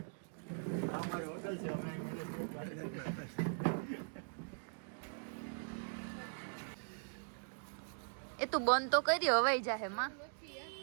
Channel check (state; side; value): silent; left; digital silence